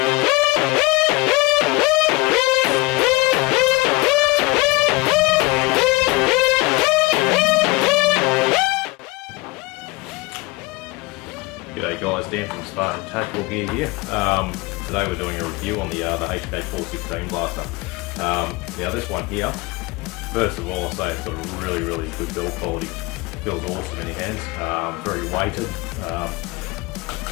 G'day guys, Dan from Spartan Tactical Gear here. Today we're doing a review on the Hk416 blaster. Now this one here, first of all I'll say it's got a really good build quality. Feels awesome in your hands, very weighted.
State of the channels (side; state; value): right; quieter; 23.4 dB